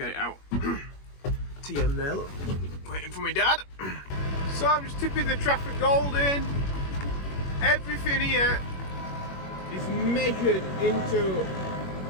it out. TM there, look, waiting for my dad. So I'm just tipping the Trafford Gold in. Everything here is measured into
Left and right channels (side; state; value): right; late; 21 ms